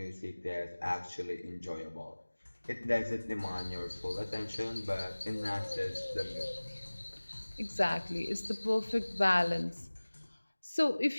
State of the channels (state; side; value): inverted; both; correlation -1.00